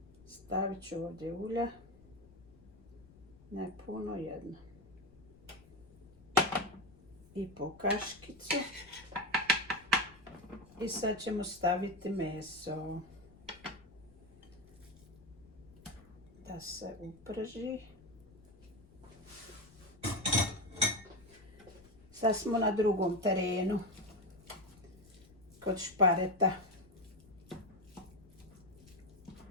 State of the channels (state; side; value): noise; left; rumble, 24 dB below the sound